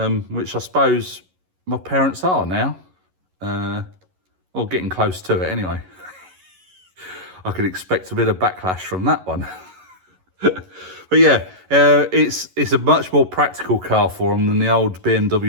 which I suppose my parents are now. Or getting close to it, anyway. I could expect a bit of backlash from that one. But yeah, it's a much more practical car for them than the old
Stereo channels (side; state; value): left; late; 11 ms